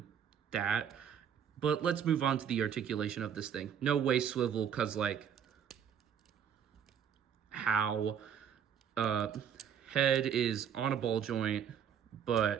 that. But let's move on to the articulation of this thing. No waist swivel, because like how head is on a ball joint,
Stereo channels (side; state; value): left; quieter; 8.5 dB